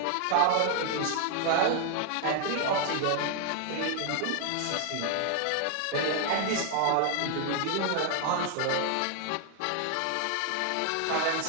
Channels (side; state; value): both; different; correlation 0.00